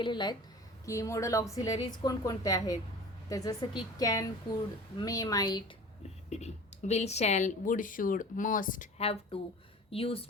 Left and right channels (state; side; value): normal; both; correlation 0.40